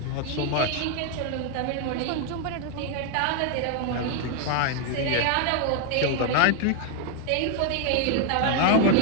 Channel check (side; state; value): both; different; correlation 0.00